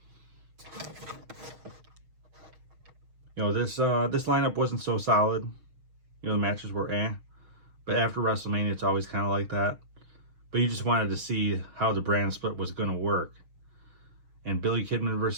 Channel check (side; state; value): left; late; 6.4 ms